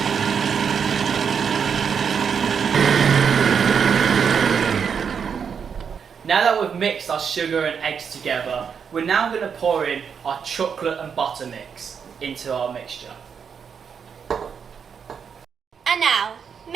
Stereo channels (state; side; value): quieter; left; 6.8 dB